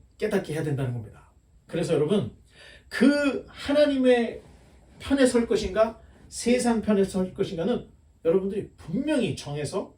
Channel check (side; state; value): both; identical; correlation 1.00